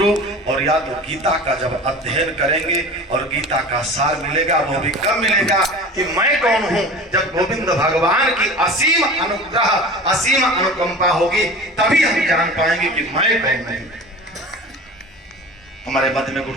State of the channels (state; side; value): normal; both; correlation 0.37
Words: और या तो गीता का जब अध्ययन करेंगे और गीता का सार मिलेगा, वो भी कब मिलेगा कि मैं कौन हूं, जब गोविंद भगवान की असीम अनुग्रह, असीम अनुकंपा होगी, तभी हम जान पाएंगे कि मैं कौन हूं। हमारे मध्य में